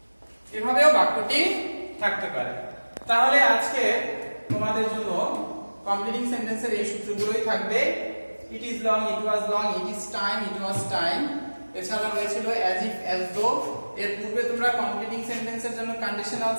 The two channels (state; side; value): inverted; both; correlation -1.00